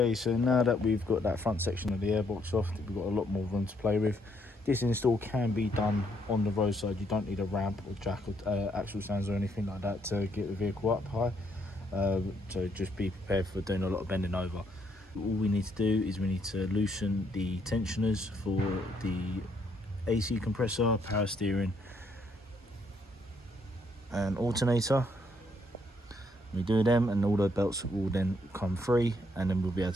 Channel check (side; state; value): both; normal; correlation 0.71